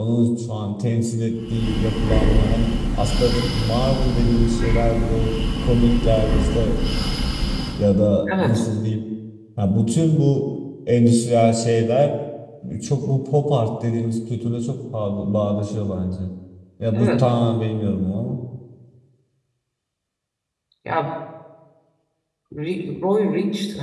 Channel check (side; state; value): both; identical; correlation 1.00